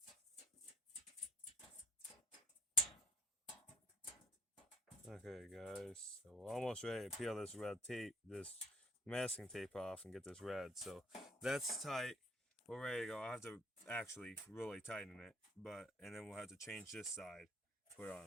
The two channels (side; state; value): both; normal; correlation 0.56